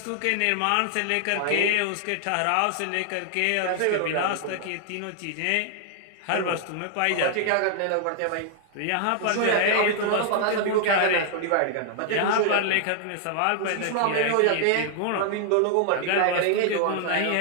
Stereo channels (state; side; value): different; both; correlation 0.00